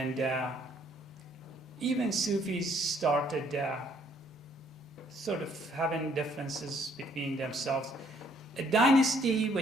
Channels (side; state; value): both; normal; correlation 0.65